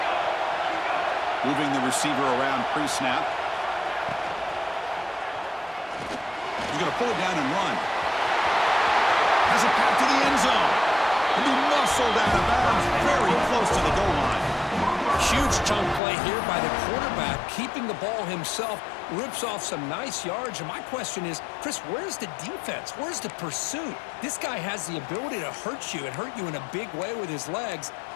Moving the receiver around pre-snap. He's going to pull it down and run. Has it back to the end zone. And he muscled out of bounds very close to the goal line. Huge chunk play here by the quarterback, keeping the ball himself, rips off some nice yards. And my question is, Chris, where's the defense? Where's the pursuit? This guy has the ability to hurt you and hurt you in a big way with his legs.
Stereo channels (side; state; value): right; drops out; at 16.0 s